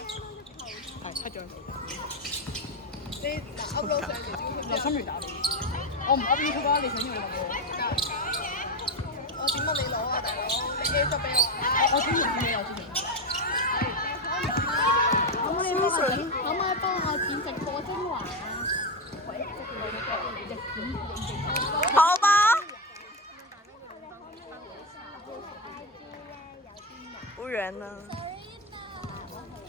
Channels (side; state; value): both; normal; correlation 0.12